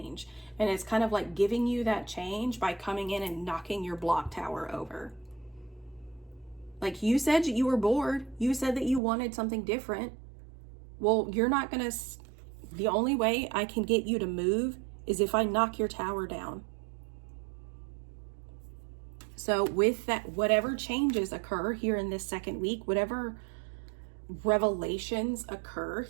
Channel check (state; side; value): drops out; left; at 9.0 s